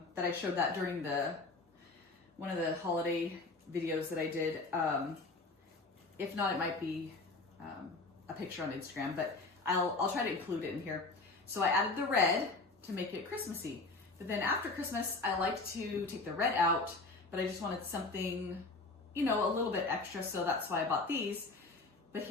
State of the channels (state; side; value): quieter; right; 3.4 dB